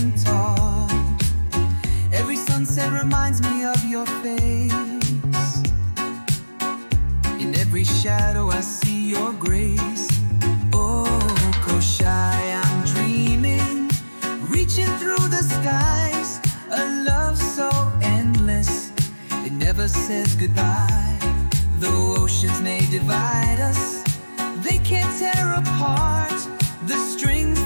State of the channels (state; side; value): inverted; both; correlation -1.00